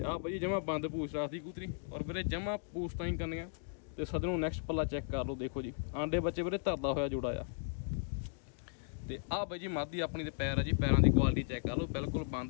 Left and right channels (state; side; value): silent; right; digital silence